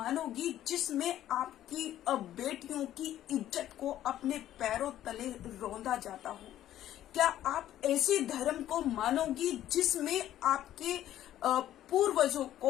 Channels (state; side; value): quieter; right; 12.5 dB